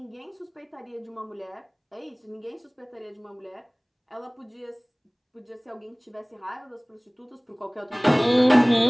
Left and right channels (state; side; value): identical; both; correlation 1.00